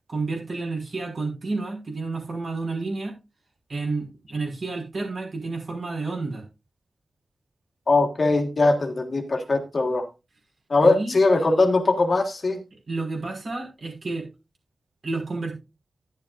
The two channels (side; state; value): both; normal; correlation 0.93